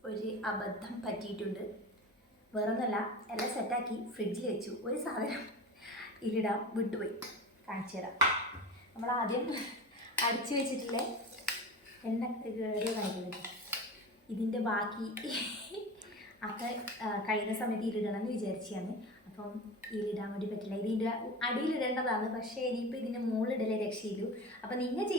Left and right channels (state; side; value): normal; both; correlation 0.31